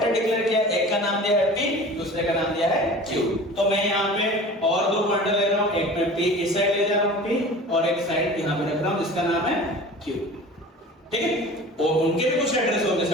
डिक्लेयर किया, एक का नाम दिया है p, दूसरे का नाम दिया है q। तो मैं यहाँ पे और दो पॉइंटर ले रहा हूँ, एक में p इस साइड ले जा रहा हूँ p, और एक साइड यहाँ पे रख रहा हूँ जिसका नाम है q। ठीक है, और उनके भी कुछ एड्रेस होंगे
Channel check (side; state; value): both; normal; correlation 0.40